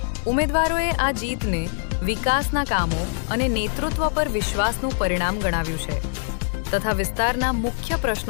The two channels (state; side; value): silent; right; digital silence